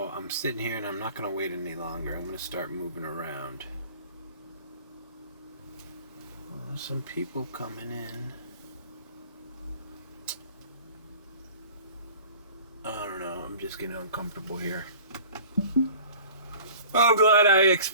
I'm sitting here and I'm not going to wait any longer. I'm going to start moving around. There's some people coming in. I don't know, I'm just getting uncomfortable here. I'm glad I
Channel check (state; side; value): inverted; both; correlation -0.45